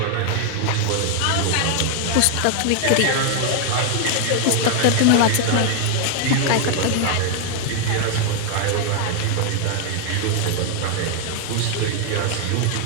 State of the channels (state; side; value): different; both; correlation 0.00